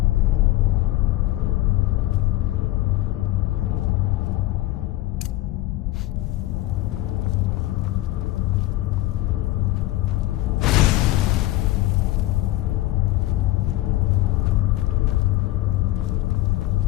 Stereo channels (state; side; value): quieter; right; 16.6 dB